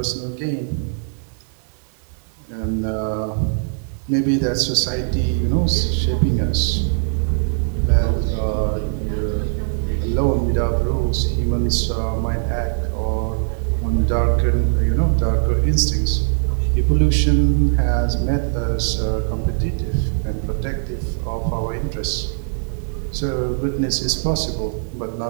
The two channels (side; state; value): left; silent; digital silence